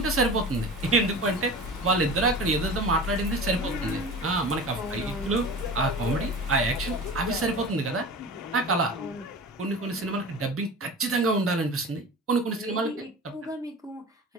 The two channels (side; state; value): both; normal; correlation 0.35